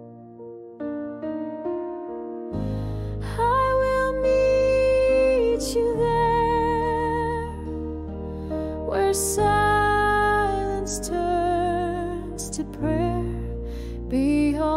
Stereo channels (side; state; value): both; identical; correlation 1.00